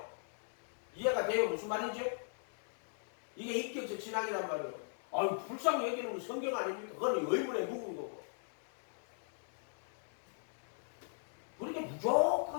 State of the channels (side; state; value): right; silent; digital silence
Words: 이해가 돼요? 무슨 말인지? 이게 인격적 신앙이란 말이에요. 아유, 불쌍히 여기는 건 성경 아닙니까? 그건 의문에 묵은 거고. 그렇게